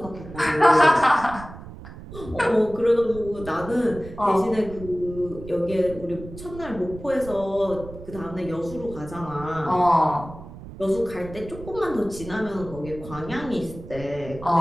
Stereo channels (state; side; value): noise; right; rumble, 14 dB below the sound